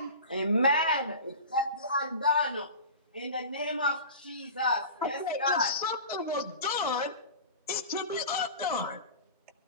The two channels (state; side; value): inverted; both; correlation -0.34